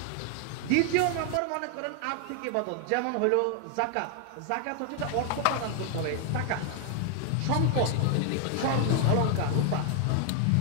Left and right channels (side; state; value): both; different; correlation 0.00